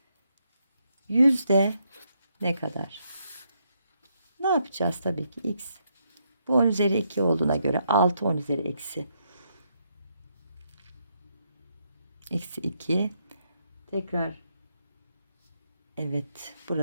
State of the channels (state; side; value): inverted; both; correlation -0.77